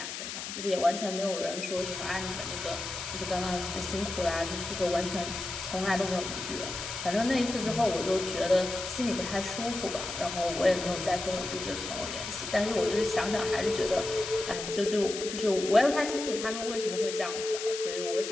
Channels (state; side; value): noise; left; hiss, 7 dB below the sound